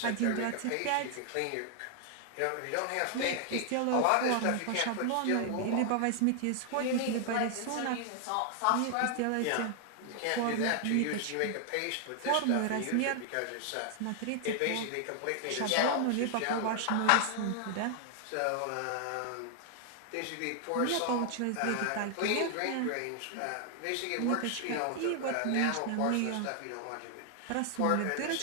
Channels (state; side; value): different; both; correlation 0.00